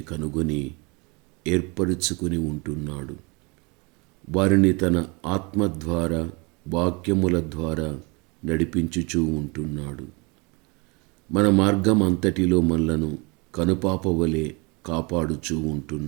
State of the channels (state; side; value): quieter; left; 29.1 dB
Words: కనుగొని ఏర్పరచుకుని ఉంటున్నాడు. వారిని తన ఆత్మ ద్వారా వాక్యముల ద్వారా నడిపించుచూ ఉంటున్నాడు. మన మార్గం అంతటిలో మనలను కనుపాప వలె కాపాడుచూ